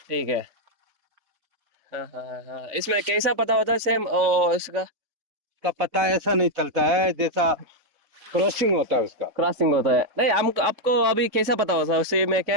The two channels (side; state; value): left; late; 3.5 ms